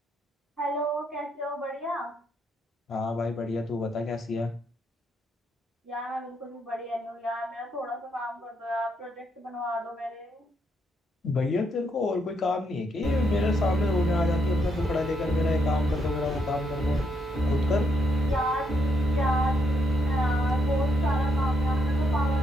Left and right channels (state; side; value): normal; both; correlation 0.77